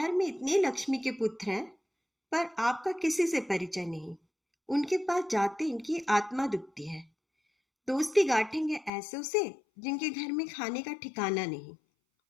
में इतने लक्ष्मी के पुत्र हैं, पर आपका किसी से परिचय नहीं। उनके पास जाते इनकी आत्मा दुखती है। दोस्ती गांठेंगे ऐसों से जिनके घर में खाने का ठिकाना नहीं।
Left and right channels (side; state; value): right; drops out; at 8.9 s